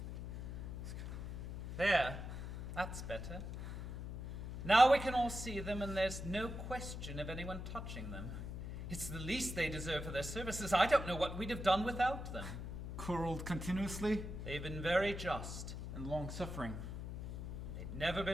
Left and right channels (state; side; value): noise; left; hum, 6 dB below the sound